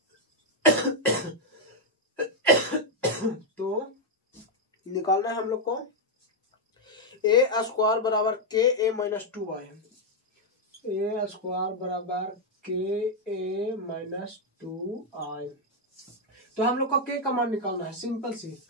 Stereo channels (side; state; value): both; normal; correlation 0.00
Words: तो निकालना है हम लोग को a² बराबर KA - 2i, a² बराबर KA - 2i। तो हम लोग को k का मान निकालना है, सिंपल सी